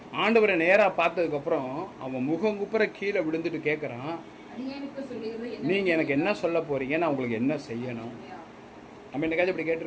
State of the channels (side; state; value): both; identical; correlation 1.00